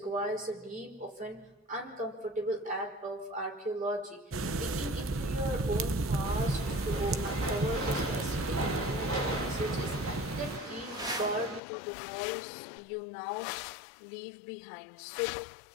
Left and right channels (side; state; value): right; drops out; at 11.6 s